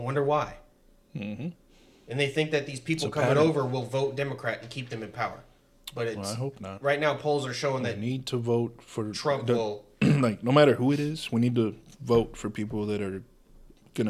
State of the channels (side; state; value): both; identical; correlation 1.00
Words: why. Mm-hmm. And they think that these people coming over will vote Democrat and keep them in power. But I hope not. Right now, polls are showing that we need to vote for Trump. Will like no matter who it is, we need to vote for people that are